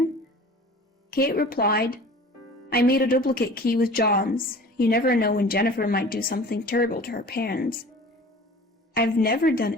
Kate replied, "I made a duplicate key with John's. You never know when Jennifer might do something terrible to her parents." I've never done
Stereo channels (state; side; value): normal; both; correlation 0.43